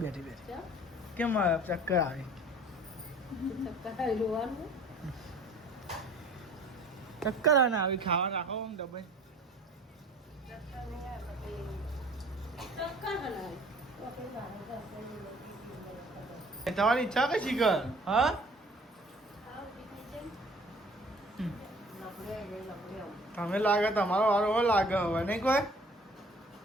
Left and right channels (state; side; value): normal; both; correlation 0.51